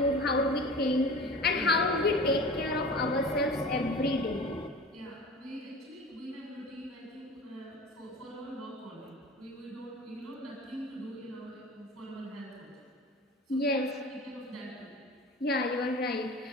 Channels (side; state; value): both; normal; correlation 0.37